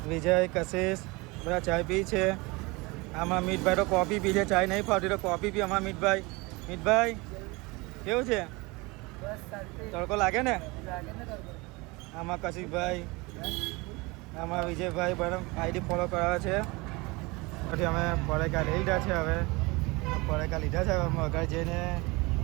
વિજય, કશિશ બધા ચાય પી છે. આમાં મીતભાઈ તો કોફી પી છે. ચાય નહીં ફાવતી તો કોફી પી. અમારા મીતભાઈ કેવું છે? તડકો લાગે ને? આમાં કશિશભાઈ, આમાં વિજયભાઈ બધા આઈડી ફોલો કરાવે છે. પછી અમે પરેકા લઈ લીધા છે. હવે પરેકા લીધા છે. અમે આગળ જઈને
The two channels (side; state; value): left; quieter; 24.8 dB